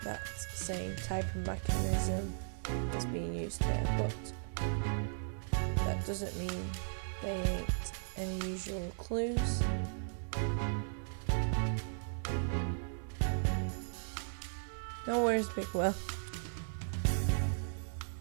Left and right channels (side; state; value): left; silent; digital silence